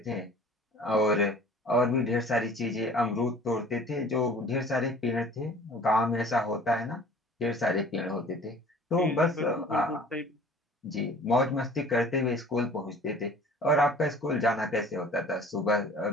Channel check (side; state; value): both; normal; correlation 0.48